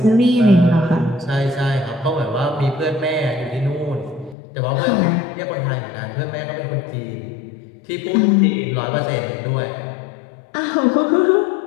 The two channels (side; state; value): right; drops out; at 4.4 s